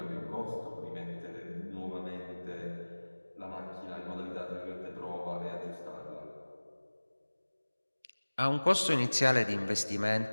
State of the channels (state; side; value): inverted; both; correlation -1.00